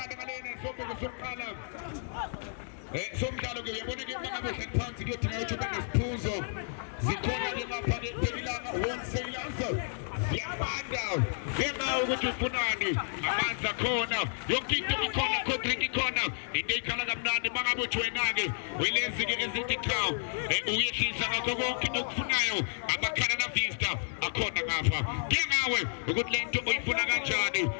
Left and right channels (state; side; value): silent; right; digital silence